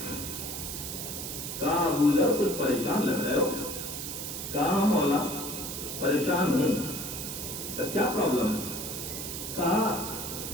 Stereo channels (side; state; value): right; noise; hiss, 6 dB below the sound